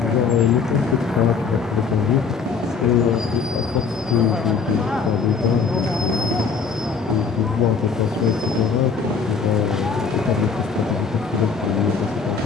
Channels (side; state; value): right; quieter; 5.4 dB